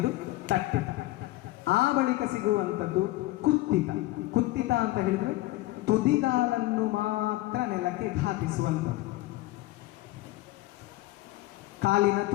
ತಟ್ಟಿತ. ಆ ಬಳಿಕ ಸಿಗುವಂಥದ್ದು ಕುತ್ತಿತ. ಕುತ್ತಿತ ಅಂತ ಹೇಳಿದ್ರೆ ತುದಿಗಾಲನ್ನು ಮಾತ್ರ ನೆಲಕ್ಕೆ ಘಾತಿಸುವಂಥದ್ದು. ಕಾಲಿನ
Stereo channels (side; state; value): right; quieter; 18.3 dB